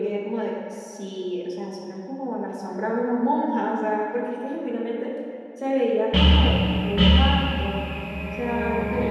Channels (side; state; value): both; identical; correlation 1.00